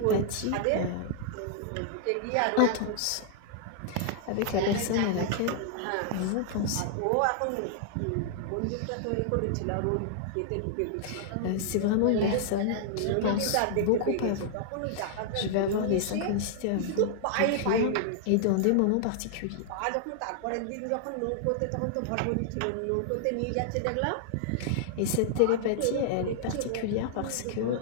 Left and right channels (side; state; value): both; different; correlation -0.01